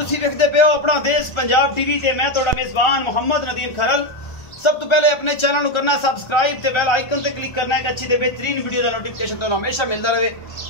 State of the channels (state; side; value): late; right; 1.3 ms